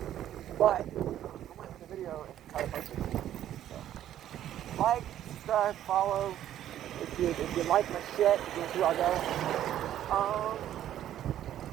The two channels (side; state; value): left; quieter; 11.6 dB